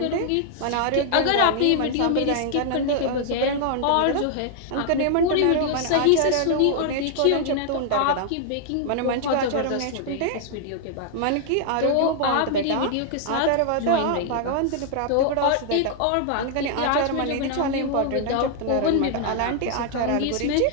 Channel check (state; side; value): different; both; correlation 0.00